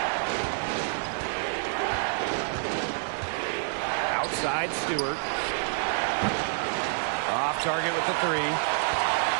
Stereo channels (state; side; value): silent; left; digital silence